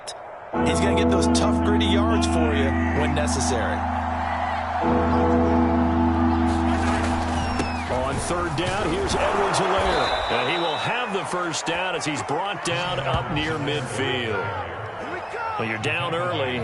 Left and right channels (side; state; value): both; identical; correlation 1.00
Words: he's going to get those tough, gritty yards for you when necessary. On 3rd down, here's Edwards-Helaire. And he will have the 1st down as he's brought down up near midfield. Well, you're down early.